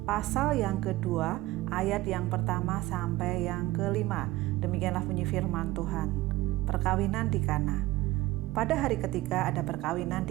pasal yang kedua, ayat yang pertama sampai yang kelima. Demikianlah bunyi firman Tuhan. Perkawinan di Kana. Pada hari ketiga ada perkawinan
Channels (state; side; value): quieter; left; 18.2 dB